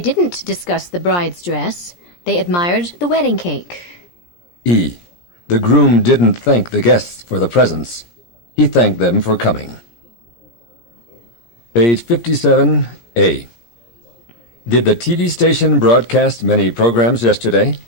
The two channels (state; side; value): late; right; 17 ms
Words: didn't discuss the bride's dress. They admired the wedding cake. E. The groom didn't thank the guests for the presents. He thanked them for coming. Page 57. A. Did the TV station broadcast many programs yesterday?